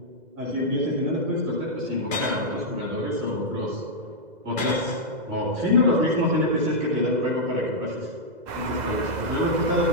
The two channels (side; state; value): left; late; 2.0 ms